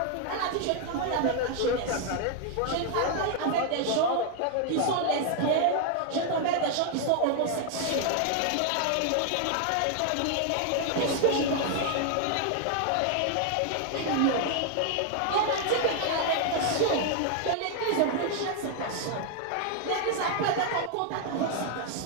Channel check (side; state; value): both; different; correlation 0.00